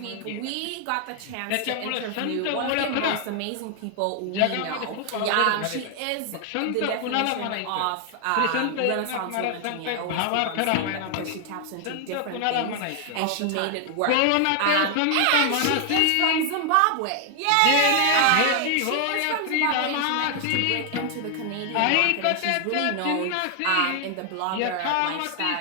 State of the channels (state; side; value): different; both; correlation 0.00